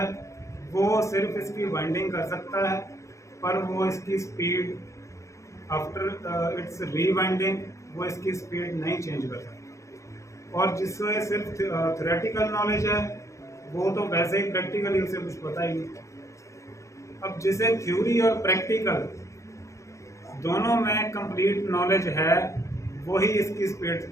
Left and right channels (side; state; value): right; late; 0.15 ms